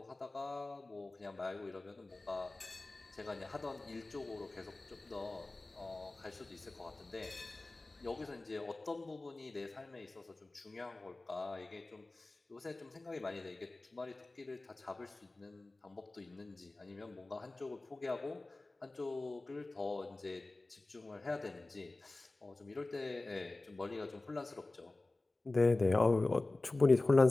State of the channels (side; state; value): right; quieter; 3.0 dB